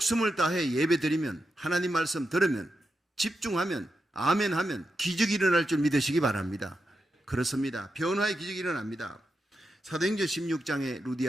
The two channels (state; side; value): normal; both; correlation 0.87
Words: 다해 예배드리면, 하나님 말씀 들으면, 집중하면, 아멘하면 기적이 일어날 줄 믿으시기 바랍니다. 그렇습니다. 변화의 기적이 일어납니다. 사도행전 16장에